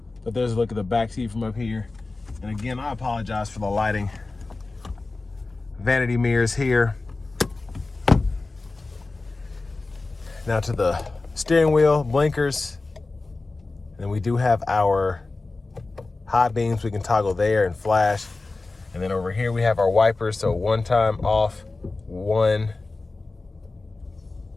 But there's a look at the back seat from up here. And again, I apologize for the lighting. Vanity mirrors here. Now to the steering wheel, blinkers. And we do have our high beams we can toggle there and flash. And then over here we have our wipers. So 1 time off, 1,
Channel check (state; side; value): quieter; right; 3.5 dB